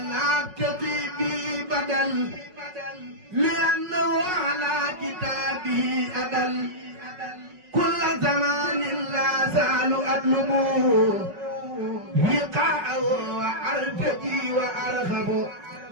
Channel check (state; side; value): late; left; 5.4 ms